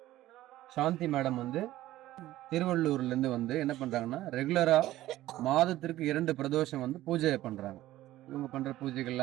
சாந்தி மேடம் திருவள்ளூர்லேருந்து என்ன பண்ணுறாங்கன்னா, ரெகுலராக மாதத்திற்கு 2 பிரதோஷம் பூஜை பண்ணுறாங்க. இவங்க பண்ணுற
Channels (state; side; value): quieter; left; 15.2 dB